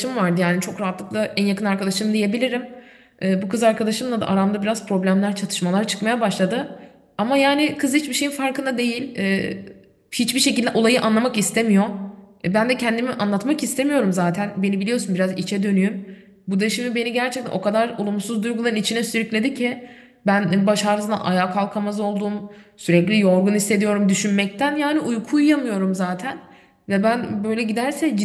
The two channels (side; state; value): both; identical; correlation 1.00